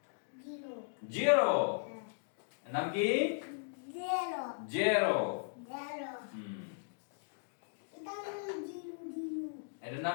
0 জিরো। এর নাম কি? 0 জিরো। 0 এটার নাম 0 এটার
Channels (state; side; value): silent; right; digital silence